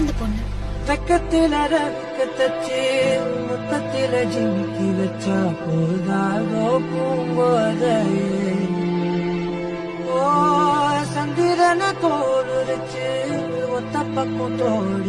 அந்த பொண்ணு? பக்கத்தில ரக்கத்தச்சு முத்தத்தில ஜிமிக்கி வச்சா போதாதோ பூங்கோதையே ஓ சந்திரன தோலுரிச்சு ஒத்த பக்கம்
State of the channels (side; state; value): both; identical; correlation 1.00